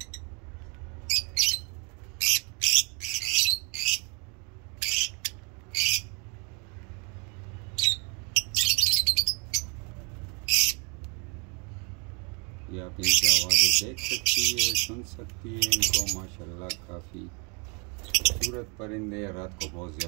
ये आप इनकी आवाज़ें देख सकती है, सुन सकती है इनको। माशाल्लाह काफ़ी खूबसूरत परिंदे। रात को बहुत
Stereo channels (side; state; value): left; quieter; 31.8 dB